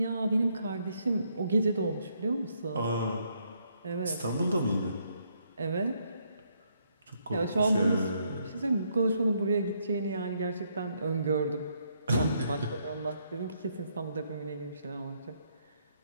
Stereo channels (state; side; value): inverted; both; correlation -0.73